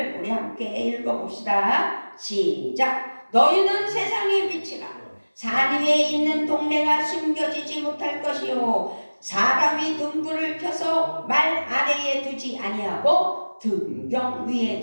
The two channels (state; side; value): inverted; both; correlation -1.00